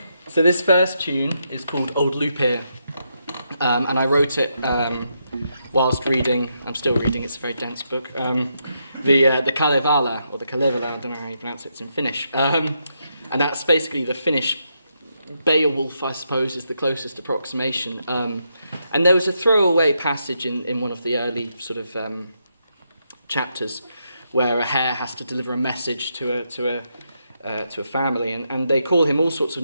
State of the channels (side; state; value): both; inverted; correlation -0.81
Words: So this first tune is called Old Lupir, and I wrote it whilst reading, I'm still reading, it's a very dense book, the Kalevala, or the Kalevala, I don't know how you pronounce it, it's in Finnish. And that's basically the Finnish Beowulf, I suppose, is the closest approximation. And there was a throwaway passage in one of the early sort of chapters where a hare has to deliver a message to a family, and they call him all sorts of